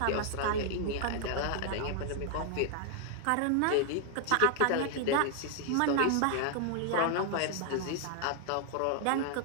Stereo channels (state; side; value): different; both; correlation 0.00